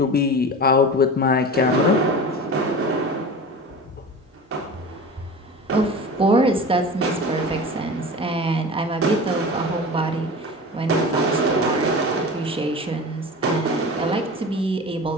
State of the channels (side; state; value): both; normal; correlation 0.33